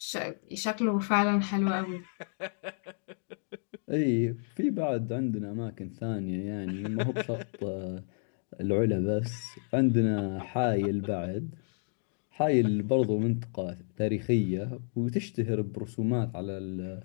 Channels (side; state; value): right; silent; 57 dB below the other